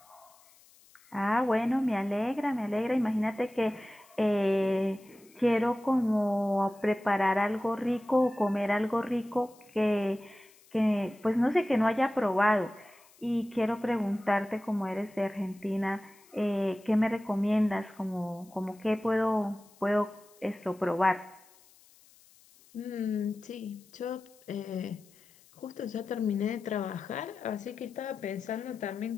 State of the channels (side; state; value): left; noise; hiss, 28 dB below the sound